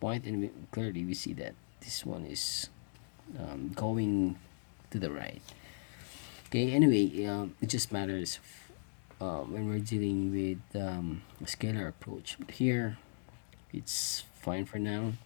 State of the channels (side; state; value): right; silent; digital silence